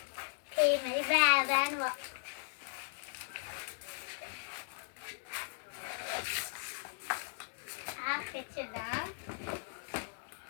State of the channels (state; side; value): silent; right; digital silence